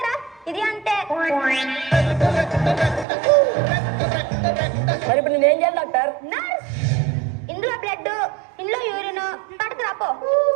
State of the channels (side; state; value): left; drops out; at 3.1 s